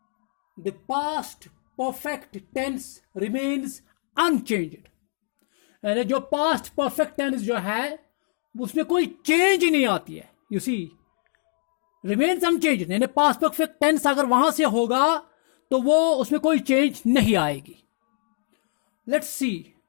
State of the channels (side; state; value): right; silent; digital silence